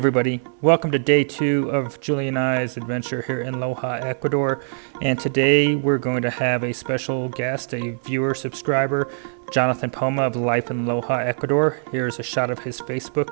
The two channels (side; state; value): left; silent; 60 dB below the other